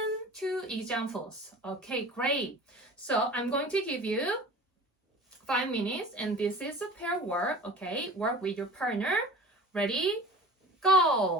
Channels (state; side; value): normal; both; correlation 0.40